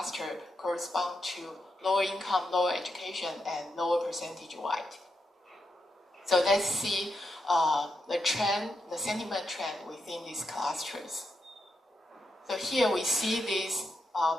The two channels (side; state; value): both; normal; correlation 0.85